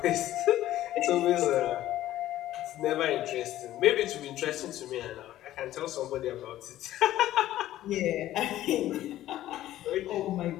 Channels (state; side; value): quieter; right; 13.9 dB